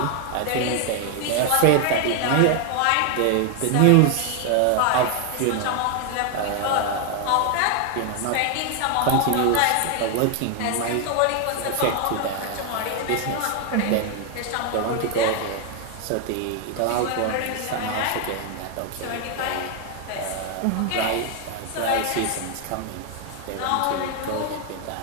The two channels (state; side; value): different; both; correlation 0.01